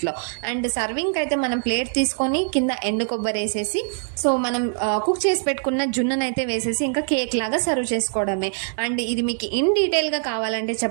అండ్ సర్వింగ్ అయితే మనం ప్లేట్ తీసుకొని కింద ఎండు కొబ్బరి వేసేసి సో మనం కుక్ చేసి పెట్టుకున్న జున్నునైతే వేసేసి ఇంకా కేక్ లాగా సర్వ్ చేసుకోవడమే. అండ్ ఇది మీకు ఇన్ డీటెయిల్గా కావాలంటే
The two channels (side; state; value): left; silent; 63 dB below the other